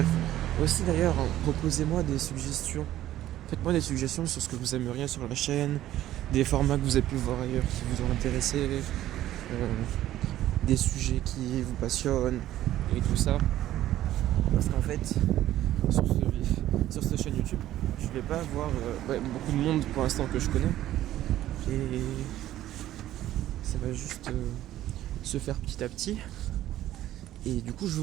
aussi d'ailleurs, proposez-moi des suggestions. Faites-moi des suggestions sur ce que vous aimeriez sur la chaîne, des formats que vous avez pu voir ailleurs qui vous ont intéressé, des sujets qui vous passionnent et tout ça. Parce qu'en fait, sur cette chaîne YouTube, je vais pas avoir beaucoup de monde pour l'instant que je connais. Et ça va juste se faire petit à petit. Et du coup, je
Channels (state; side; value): quieter; left; 13.5 dB